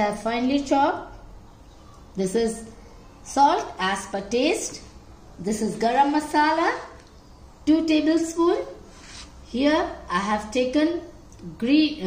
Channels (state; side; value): identical; both; correlation 1.00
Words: have finely chopped. This is salt as per taste. This is garam masala, 2 tablespoons. Here I have taken